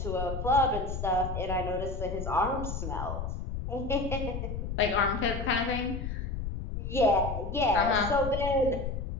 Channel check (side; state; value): left; noise; rumble, 5 dB below the sound